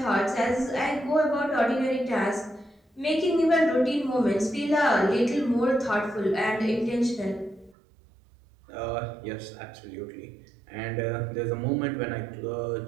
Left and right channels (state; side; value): drops out; left; at 7.8 s